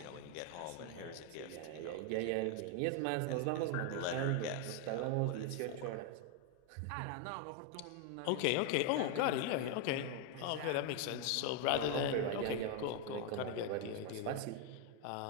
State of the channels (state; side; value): different; both; correlation 0.01